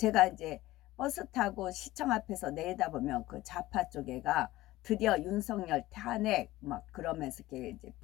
이제 버스 타고 시청 앞에서 내려다보면 그 좌파 쪽에가 드디어 윤석열 탄핵 막 그러면서 이렇게 이제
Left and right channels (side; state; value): right; quieter; 17.2 dB